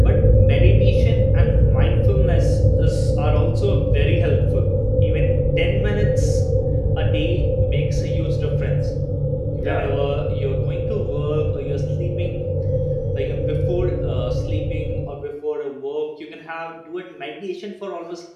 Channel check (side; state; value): both; identical; correlation 1.00